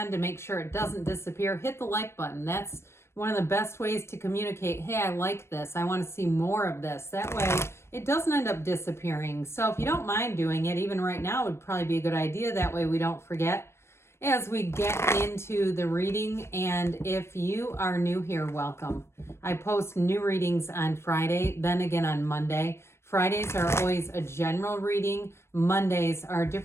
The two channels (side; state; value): right; late; 0.13 ms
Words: to make sure it doesn't disappear? Hit the like button. That's one of the best ways to communicate, hey, I like this. I want to see more of this. That way it doesn't end up disappearing. So if you don't mind doing it, even right now would probably be a good idea. That way we don't forget as we get into the reading. And if you are new here, welcome. I post new readings on Friday, then again on Monday. Fridays are always a general reading. Mondays are a